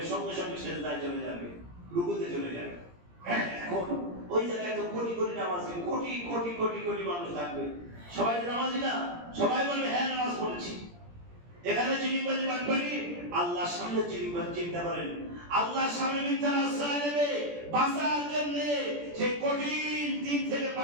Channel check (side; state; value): left; late; 17 ms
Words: সঙ্গে সঙ্গে সিজদায় চলে যাবে, রুকুতে চলে যাবে। এখন ওই জায়গায় তো কোটি কোটি নামাজি, কোটি কোটি কোটি কোটি মানুষ থাকবে, সবাই নামাজি না? সবাই বলবে হ্যাঁ নামাজ পড়েছি। এখানে চিনিবাজি বাটপাটি, আল্লাহর সামনে চিনিবাজি। চিন্তা করেন, আল্লাহর সামনে মিথ্যার আশ্রয় নেবে বাঁচার জন্য, সেই কঠিন দিন থেকে